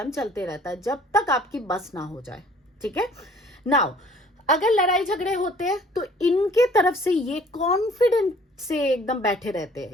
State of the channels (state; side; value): normal; both; correlation 0.54